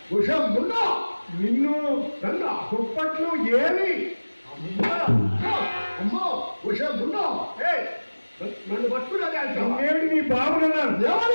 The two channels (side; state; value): both; inverted; correlation -1.00